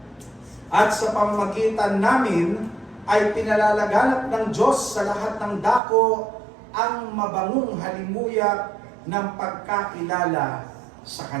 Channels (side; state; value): left; drops out; at 5.8 s